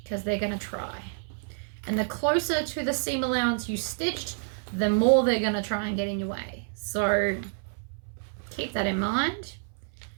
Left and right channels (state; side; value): silent; left; 59 dB below the other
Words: because they're gonna try. And the closer to the seam allowance you stitched, the more they're gonna try and get in your way. So keep that in mind.